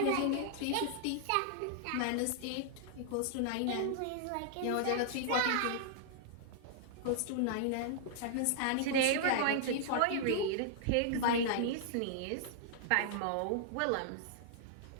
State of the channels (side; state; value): both; different; correlation -0.01